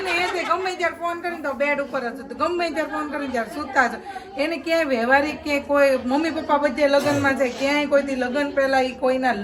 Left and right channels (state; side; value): identical; both; correlation 1.00